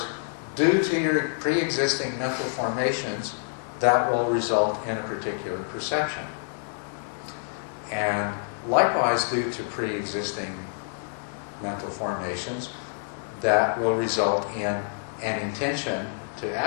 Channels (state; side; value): silent; right; digital silence